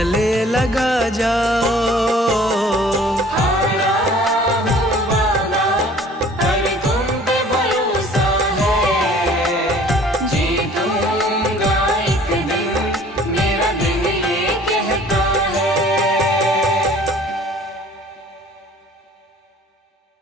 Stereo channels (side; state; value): both; normal; correlation 0.51